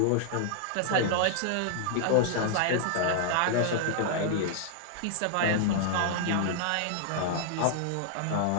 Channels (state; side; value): different; both; correlation -0.01